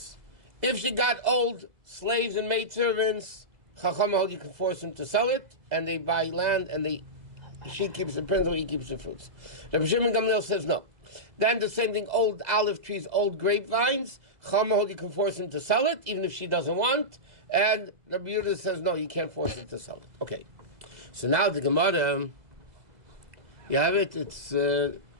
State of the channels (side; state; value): left; late; 2.0 ms